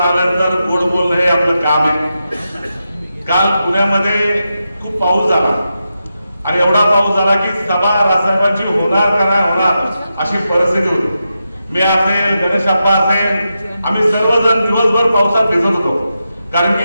आल्यानंतर गोड बोलणं हे आपलं काम आहे. काल पुण्यामध्ये खूप पाऊस झाला आणि एवढा पाऊस झाला की सभा राजसाहेबांची होणार का नाही होणार अशी परिस्थिती होती. मी असेल, गणेश अप्पा असेल, आम्ही सर्वजण दिवसभर पावसात भिजत होतो, कारण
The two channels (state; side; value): inverted; both; correlation -0.88